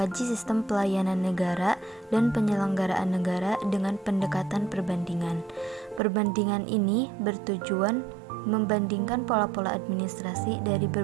sistem pelayanan negara dan penyelenggaraan negara dengan pendekatan perbandingan. Perbandingan ini bertujuan membandingkan pola-pola administrasi dari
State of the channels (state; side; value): drops out; left; at 6.0 s